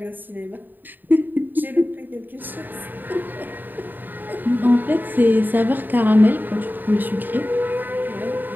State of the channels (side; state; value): left; late; 0.090 ms